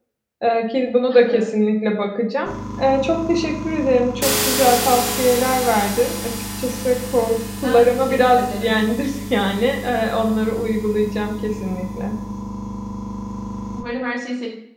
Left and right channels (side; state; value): both; identical; correlation 1.00